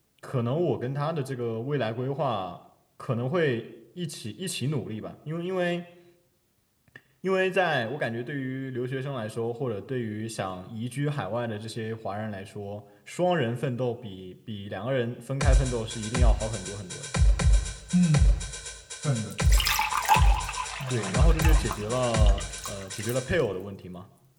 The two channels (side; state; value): both; identical; correlation 1.00